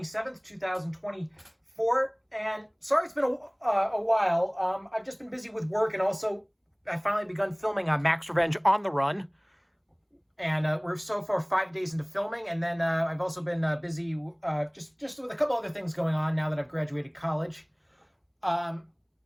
2024. And sorry it's been a while. I've just been busy with work, and also I finally begun filming Max Revenge on the Run. And we're so far 5 days into filming, and then I've also been busy just with a couple other things going on now that I've graduated college.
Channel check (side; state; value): both; identical; correlation 1.00